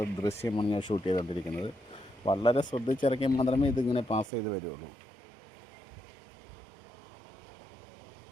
ദൃശ്യമാണ് ഞാൻ ഷൂട്ട് ചെയ്തുകൊണ്ടിരിക്കുന്നത്. വളരെ ശ്രദ്ധിച്ചിറക്കിയാൽ മാത്രമേ ഇതിങ്ങനെ പാസ് ചെയ്ത് വരുള്ളൂ.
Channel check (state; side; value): drops out; left; at 4.3 s